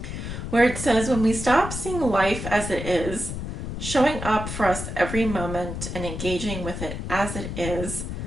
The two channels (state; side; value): noise; left; rumble, 6 dB below the sound